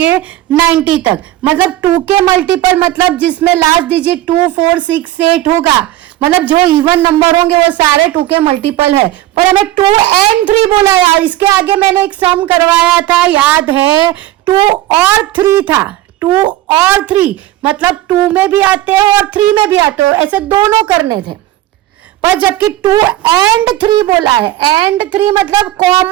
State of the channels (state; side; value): quieter; left; 14.9 dB